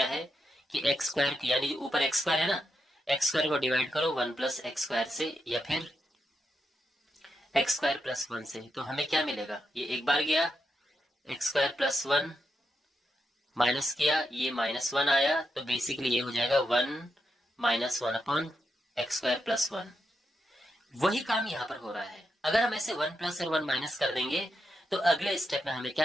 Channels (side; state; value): both; normal; correlation 0.84